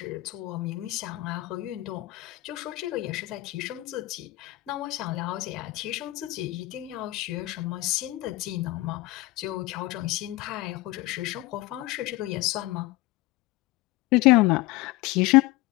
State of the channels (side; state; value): right; quieter; 19.1 dB